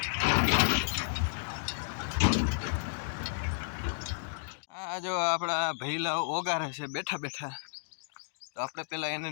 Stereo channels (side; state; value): right; silent; digital silence